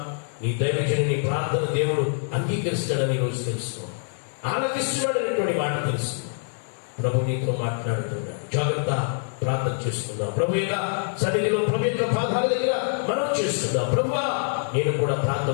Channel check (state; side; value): silent; right; digital silence